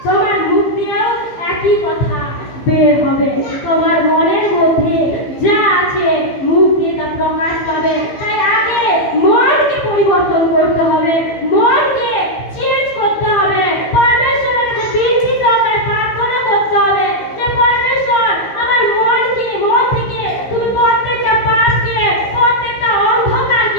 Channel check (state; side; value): late; right; 15 ms